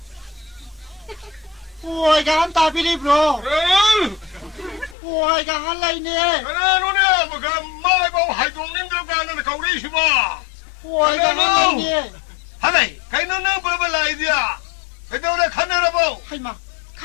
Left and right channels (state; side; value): drops out; right; at 5.0 s